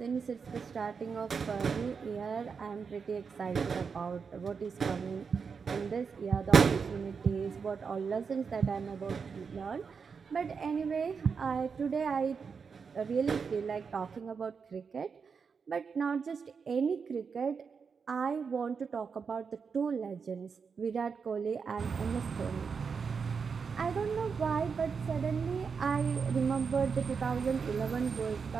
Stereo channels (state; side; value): quieter; left; 5.7 dB